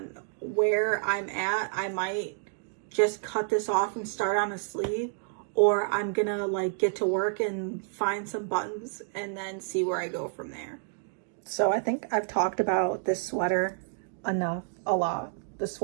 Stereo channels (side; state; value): left; silent; digital silence